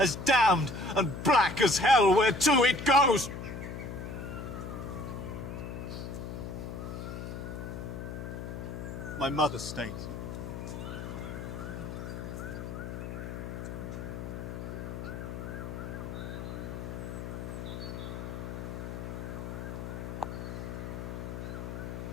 damned and black as hell whereto it goes. My mother stays.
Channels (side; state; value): left; noise; hum, 6 dB below the sound